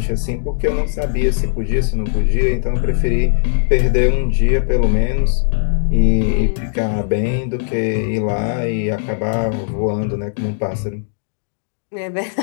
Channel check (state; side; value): silent; right; digital silence